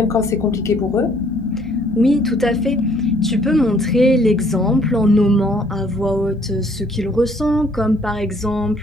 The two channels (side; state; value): both; normal; correlation 0.62